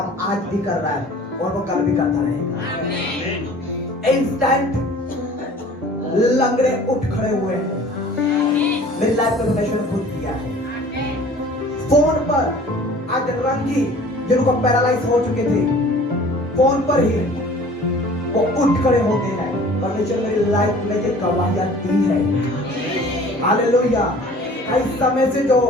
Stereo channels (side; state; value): both; normal; correlation 0.47